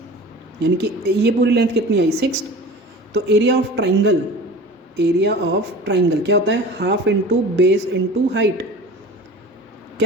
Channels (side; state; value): both; normal; correlation 0.38